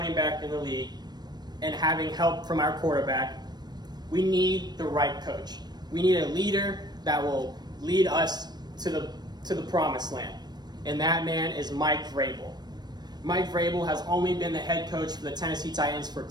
back in the league and having help from our quarterback, we need the right coach. We need a leader that will lead us to the promised land. And that man is Mike Vrabel. Mike Vrabel has only been the head coach for the Tennessee Titans for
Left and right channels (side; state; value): left; late; 0.20 ms